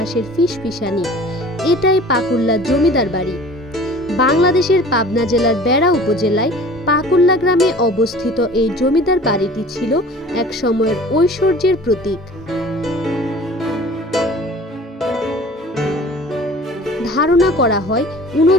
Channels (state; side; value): normal; both; correlation 0.44